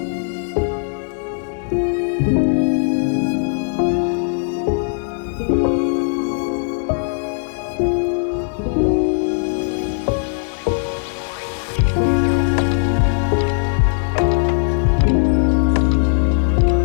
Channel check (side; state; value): right; silent; digital silence